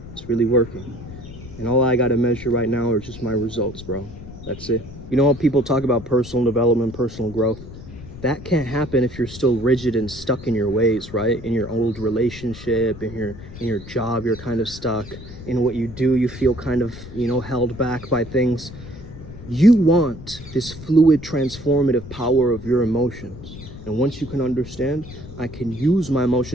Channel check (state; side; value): noise; left; rumble, 14 dB below the sound